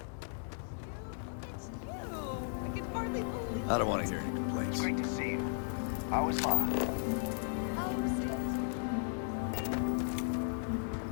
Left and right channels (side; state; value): right; silent; digital silence